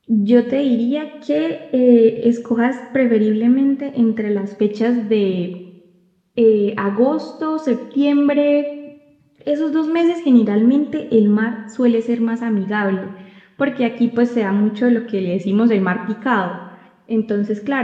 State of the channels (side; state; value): both; identical; correlation 1.00